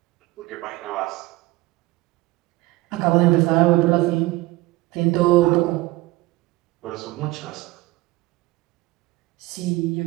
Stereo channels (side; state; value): left; quieter; 19.9 dB